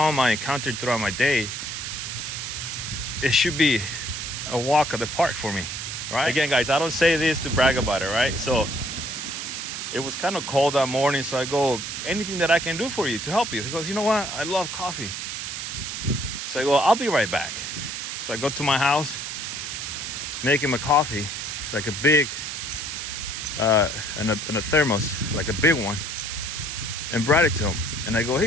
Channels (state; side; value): noise; right; hiss, 5 dB below the sound